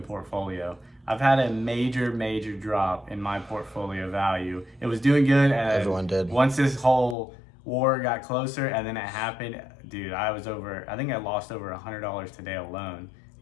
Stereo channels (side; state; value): right; drops out; at 7.2 s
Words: portfolio. I've had a major drop in my portfolio value. It was doing good, and Everyone did. once this whole war got closer and then it happened, dude, I think I lost over $100 today alone